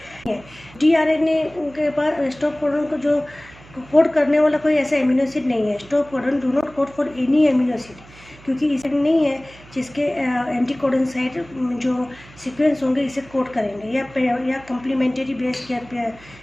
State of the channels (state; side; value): noise; right; hum, 22 dB below the sound